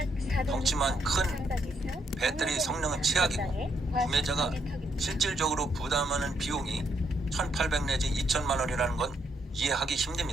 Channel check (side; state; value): both; normal; correlation 0.76